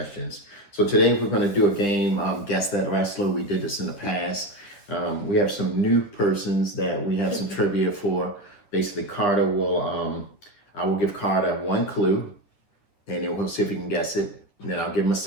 So today we're going to do a game, Guess That Wrestler. We did this in the past. We have some new persons that we have some trivia for. Basically, Karter will, I will give Karter one clue, and then we'll see if he can guess it. And then I'll give him a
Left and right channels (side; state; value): right; late; 10 ms